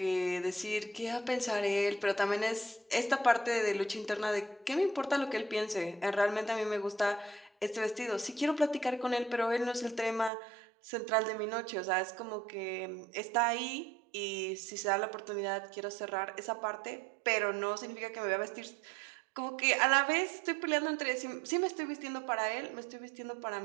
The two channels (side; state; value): left; drops out; at 10.3 s